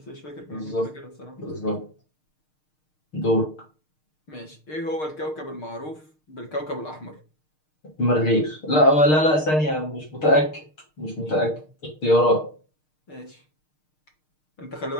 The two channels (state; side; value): late; right; 6.5 ms